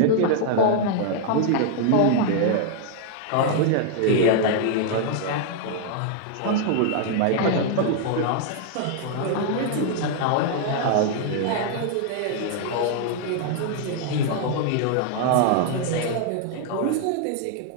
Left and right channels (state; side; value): different; both; correlation -0.01